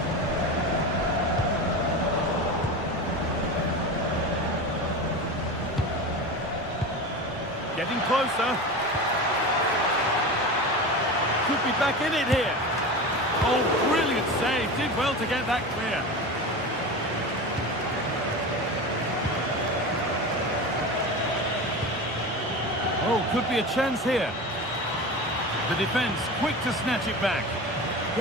Getting closer. Could be back in it here. Oh, brilliant save. Did well to get that clear. Oh, could be a chance here. The defence quick to snatch it back.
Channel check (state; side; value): normal; both; correlation 0.28